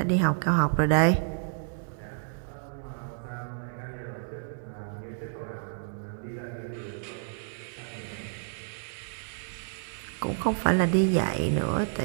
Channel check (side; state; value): left; silent; digital silence